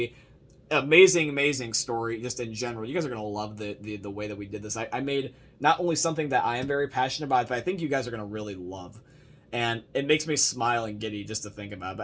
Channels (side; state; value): both; identical; correlation 1.00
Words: amazing story just in general. You guys are going to love the way that we did this. I made not only something that I am very passionate about, but I think you guys are going to really love. And it makes me smile and giddy just to think about it.